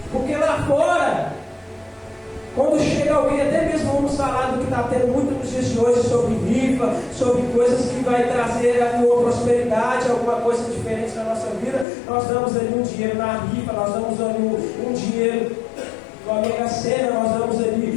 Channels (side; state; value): right; drops out; at 11.9 s